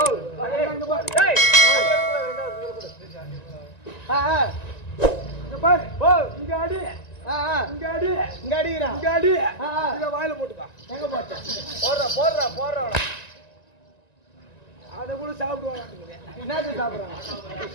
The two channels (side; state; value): right; late; 1.9 ms